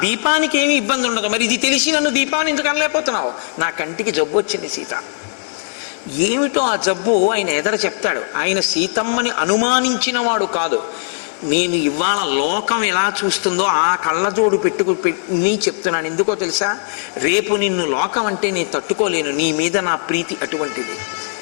దీపానికి ఏమి ఇబ్బంది ఉండదు. మరి ఇది తెలిసి నన్ను దీపాన్ని ఎందుకు అనలేకపోతున్నావు? నా కంటికి జబ్బు వచ్చింది సీత. ఏమిటో ఆ జబ్బు ఆయన ఎదర చెప్తాడు. ఆయన సీతమ్మని అనుమానించిన వాడు కాదు. నేను ఇవాళ లోకం ఎలా చూస్తుందో ఆ కళ్ళజోడు పెట్టుకుని చెప్తున్నాను. ఎందుకో తెలుసా? రేపు నిన్ను లోకం అంటే నేను తట్టుకోలేను, నీ మీద నా ప్రీతి అటువంటిది.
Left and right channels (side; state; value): right; silent; 55 dB below the other